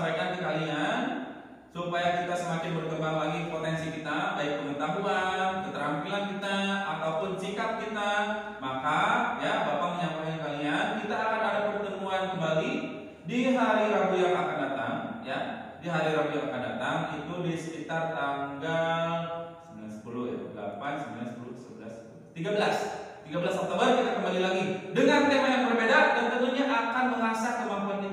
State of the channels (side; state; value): both; identical; correlation 1.00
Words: ke kalian supaya kita semakin berkembang lagi potensi kita, baik pengetahuan, keterampilan kita ataupun sikap kita, maka ya Bapak menyampaikan kalian kita akan ada pertemuan kembali di hari Rabu yang akan datang ya. Di hari Rabu yang akan datang itu di sekitar tanggal 9, 10 ya, 8, 9, 10, 11, 13 Oktober kita kembali lagi dengan tema yang berbeda dan tentunya akan mengasah kemampuan